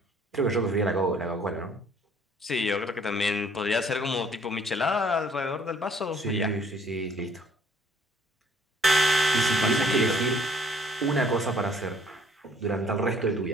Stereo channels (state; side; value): normal; both; correlation 0.59